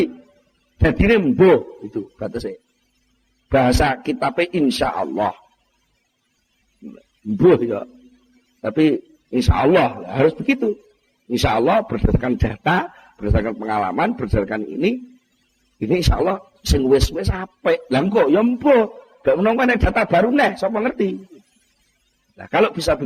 Jadi rembo itu batasnya. Bahasa kitabnya insya Allah. Mbuh ya. Tapi insya Allah harus begitu. Insya Allah berdasarkan data, berdasarkan pengalaman, berdasarkan ini insya Allah sing wis-wis apik. Lah kok ya mbuh. Gak menunggu data baru nih, sapa ngerti. Nah kalau bisa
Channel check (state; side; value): identical; both; correlation 1.00